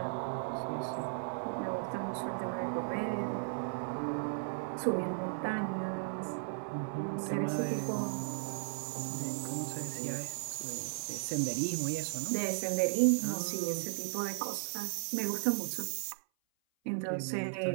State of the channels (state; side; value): silent; left; 54 dB below the other